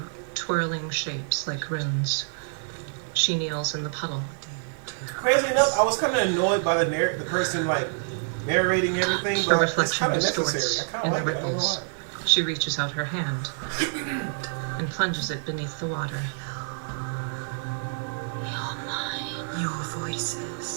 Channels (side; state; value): left; silent; digital silence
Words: twirling shapes like runes. She kneels in the puddle. Crazy enough, I was kind of annoyed by the person like narrating everything, The but it's reflection kind of distorts necessary. I kind and of like it. I don't know ripples. why. She reaches out her hand and plunges it beneath the water. You're mine. Your